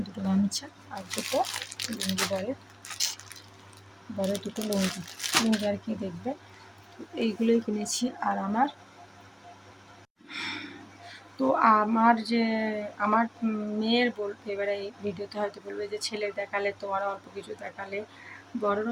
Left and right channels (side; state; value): both; identical; correlation 1.00